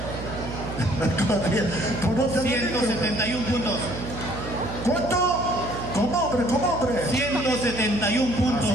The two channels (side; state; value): right; noise; hum, 8 dB below the sound